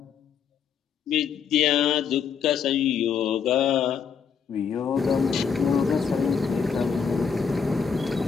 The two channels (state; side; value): quieter; right; 6.7 dB